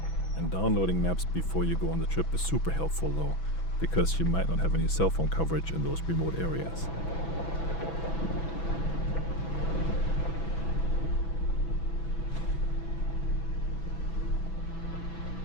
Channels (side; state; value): right; late; 6.1 ms